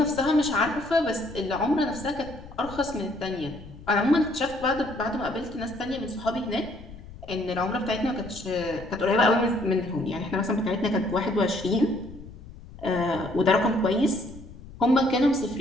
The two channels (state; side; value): noise; left; rumble, 17 dB below the sound